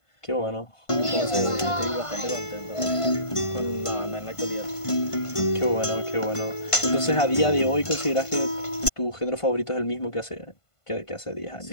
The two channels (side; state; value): right; late; 1.5 ms